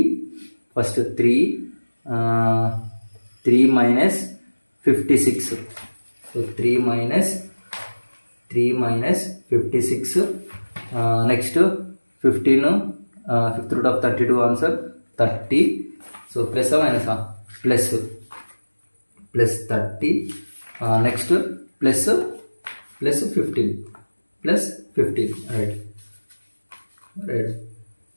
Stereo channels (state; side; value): inverted; both; correlation -1.00